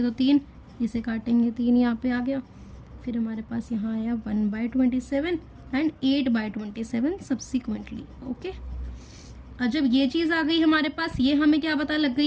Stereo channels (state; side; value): identical; both; correlation 1.00